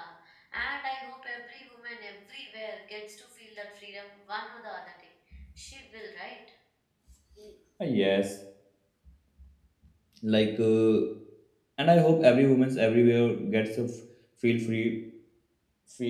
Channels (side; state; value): both; identical; correlation 1.00